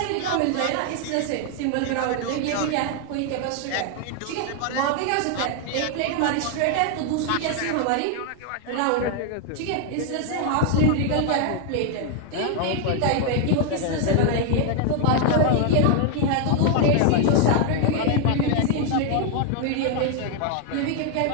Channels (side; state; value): both; different; correlation 0.00